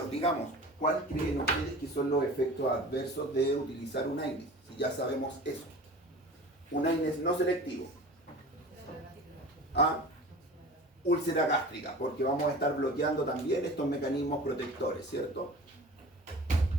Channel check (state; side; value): normal; both; correlation 0.38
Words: digamos, ¿cuál creen ustedes que son los efectos adversos de utilizar un AINES? Si ya sabemos eso. Un AINES no selectivo. Úlcera gástrica, porque vamos a estar bloqueando también estos mecanismos protectores, ¿cierto?